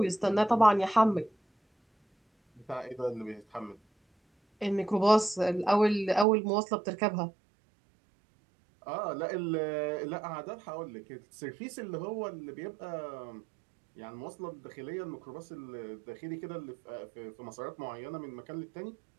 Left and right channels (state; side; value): drops out; left; at 6.2 s